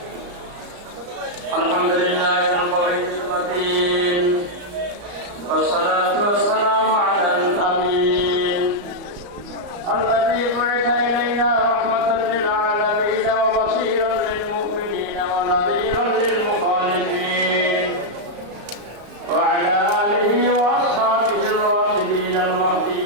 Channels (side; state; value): left; late; 34 ms